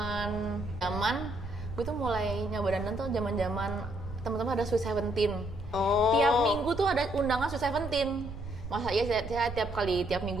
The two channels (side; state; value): right; noise; rumble, 10 dB below the sound